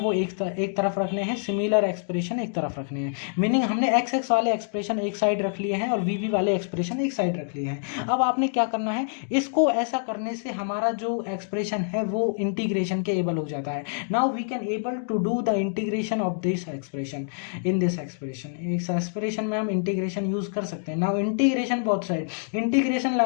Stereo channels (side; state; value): right; silent; digital silence